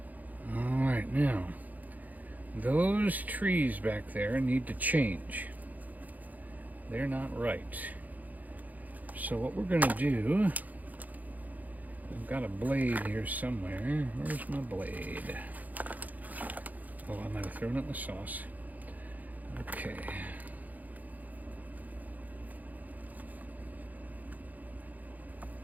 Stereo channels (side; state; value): left; late; 0.080 ms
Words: All right, now those trees back there need to change. They're not right. So what we're going to do I've got a blade here somewhere. Where's my blade? Oh, I might have thrown it in the sauce. Okay.